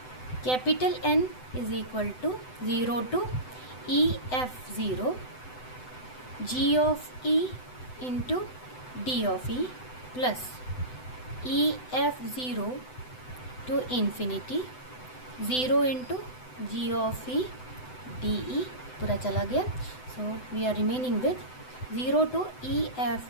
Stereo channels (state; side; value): late; right; 7.9 ms